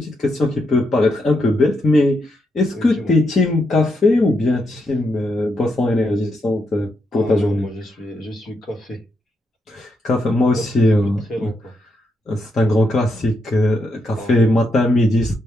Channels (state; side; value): normal; both; correlation 0.81